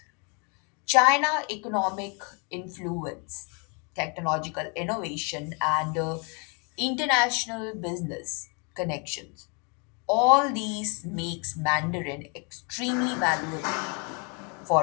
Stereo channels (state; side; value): quieter; right; 34.7 dB